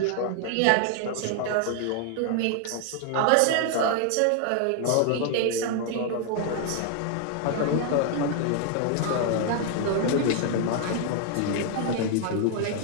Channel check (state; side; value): different; both; correlation 0.00